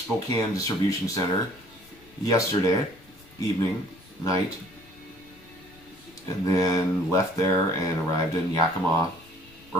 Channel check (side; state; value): left; noise; rumble, 25 dB below the sound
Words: distribution center yesterday night, and then left there and arrived in Yakima